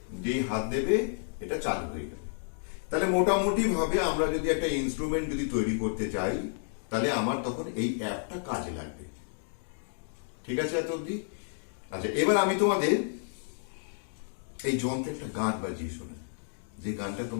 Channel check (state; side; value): silent; right; digital silence